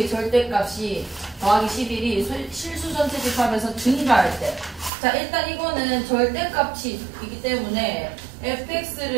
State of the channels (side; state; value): left; drops out; at 4.9 s